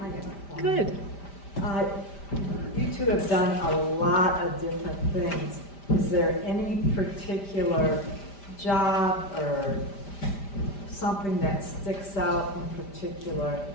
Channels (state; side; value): late; right; 5.0 ms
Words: Good. You two have done a lot of different things. Is there any particular job or something that sticks out in particular